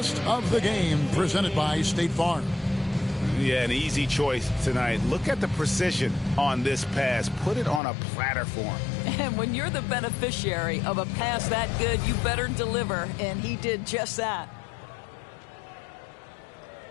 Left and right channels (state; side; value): drops out; right; at 7.8 s